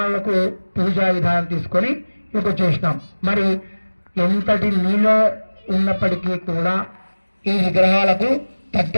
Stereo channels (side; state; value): both; inverted; correlation -1.00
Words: పూజా విధానం తీసుకొని ఇక చేసినాం. మరి ఎంతటి నీళ్ళ ఉన్నప్పటికీ కూడా ఈ విగ్రహాలకు